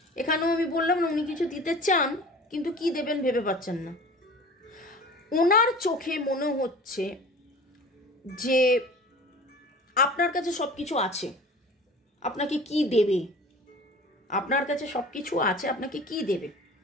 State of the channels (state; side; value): normal; both; correlation 0.41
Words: এখানেও আমি বললাম না, উনি কিছু দিতে চান কিন্তু কি দেবেন ভেবে পাচ্ছেন না। ওনার চোখে মনে হচ্ছে যে আপনার কাছে সব কিছু আছে, আপনাকে কি দেবে, আপনার কাছে সব কিছু আছে, আপনাকে কি দেবে,